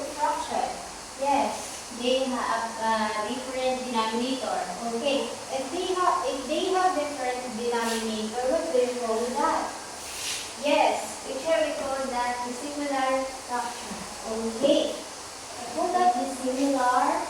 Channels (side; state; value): both; identical; correlation 1.00